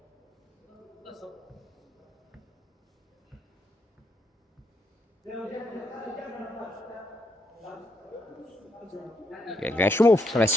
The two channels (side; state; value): both; normal; correlation 0.77